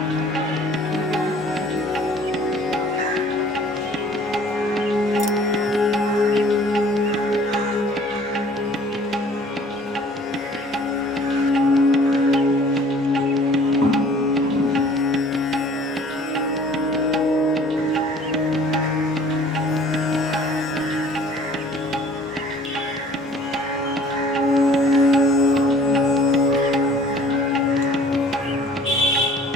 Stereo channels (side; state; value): both; normal; correlation 0.52